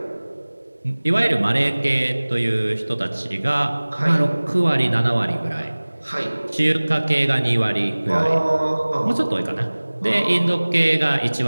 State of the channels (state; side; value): inverted; both; correlation -1.00